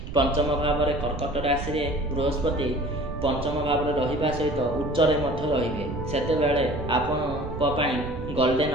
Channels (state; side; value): noise; right; rumble, 9 dB below the sound